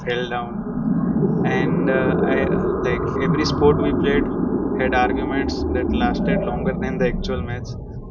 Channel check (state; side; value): identical; both; correlation 1.00